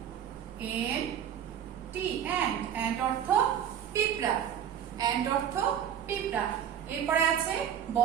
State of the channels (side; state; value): left; quieter; 9.3 dB